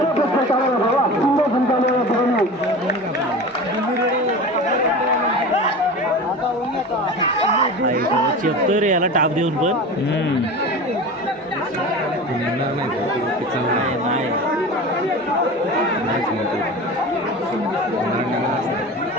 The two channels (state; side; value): normal; both; correlation 0.32